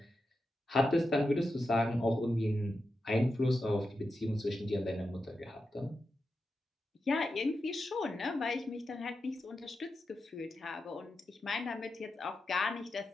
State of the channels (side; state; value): both; normal; correlation 0.89